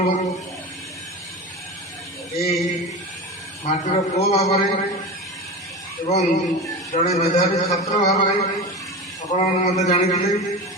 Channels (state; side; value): normal; both; correlation 0.26